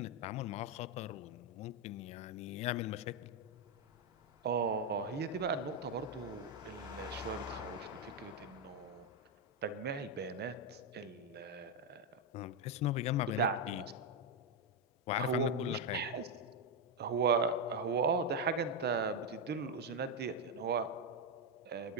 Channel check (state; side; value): normal; both; correlation 0.03